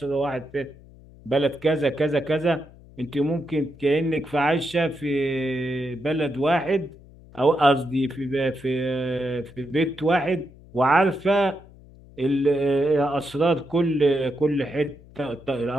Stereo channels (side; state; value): left; noise; hum, 22 dB below the sound